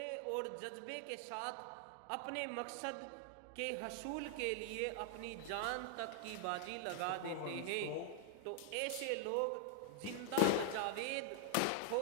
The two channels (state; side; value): different; both; correlation 0.00